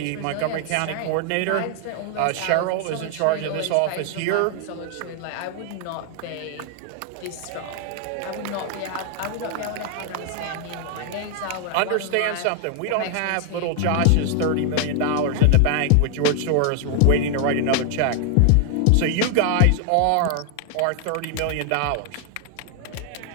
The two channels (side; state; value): both; different; correlation 0.00